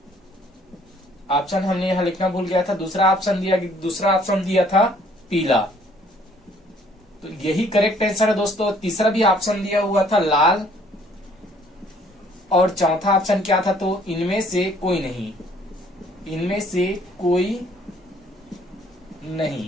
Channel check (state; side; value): normal; both; correlation 0.60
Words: ऑप्शन हमने यहाँ लिखना भूल गया था। दूसरा ऑप्शन दिया था पीला, तो यही करेक्ट आंसर है दोस्तों। तीसरा भी ऑप्शन दिया हुआ था लाल और चौथा ऑप्शन क्या था, तो इनमें से कोई नहीं, इनमें से कोई